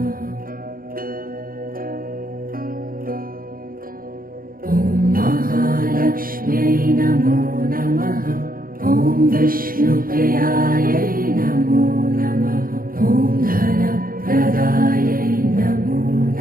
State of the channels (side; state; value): left; late; 0.42 ms